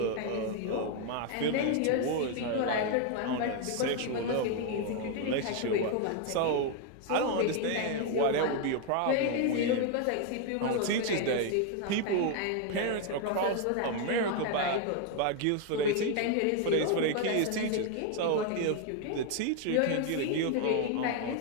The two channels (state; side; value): different; both; correlation 0.01